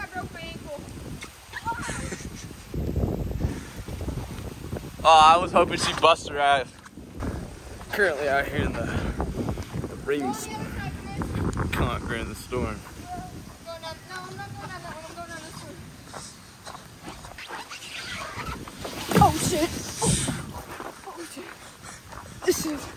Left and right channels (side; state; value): both; identical; correlation 1.00